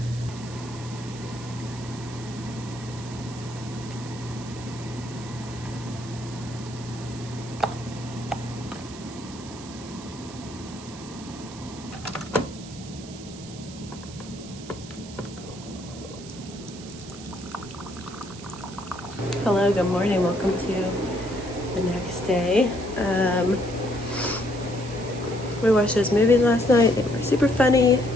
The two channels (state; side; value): noise; right; hiss, 16 dB below the sound